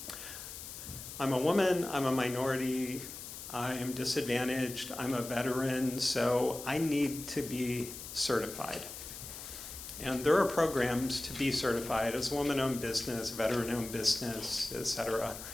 a woman, I'm a minority, I am disadvantaged, I'm a veteran, so I need to be certified. And there are programs to be certified as a woman-owned business, veteran-owned business, etc.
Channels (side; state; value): left; noise; hiss, 11 dB below the sound